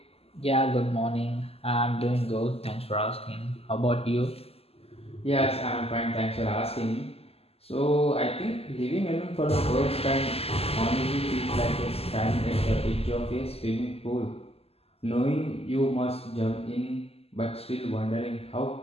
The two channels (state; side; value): late; right; 0.29 ms